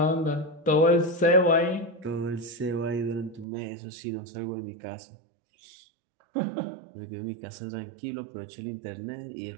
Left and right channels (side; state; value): left; drops out; at 3.5 s